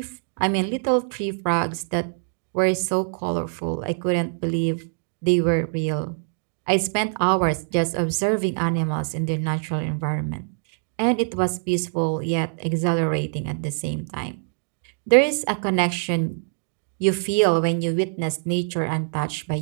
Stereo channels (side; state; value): left; silent; digital silence